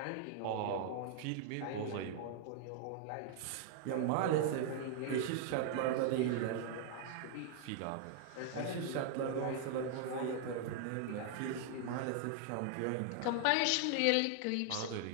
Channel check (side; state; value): both; different; correlation 0.00